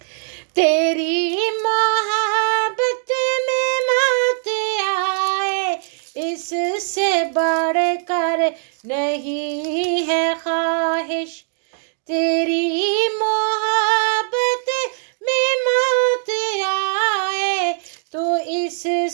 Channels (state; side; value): silent; left; digital silence